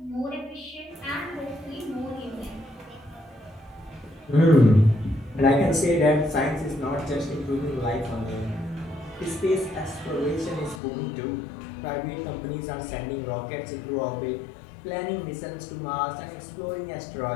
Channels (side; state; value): right; drops out; at 10.8 s